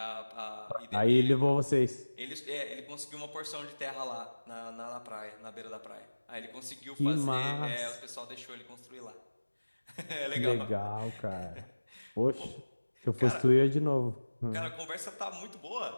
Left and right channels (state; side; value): inverted; both; correlation -1.00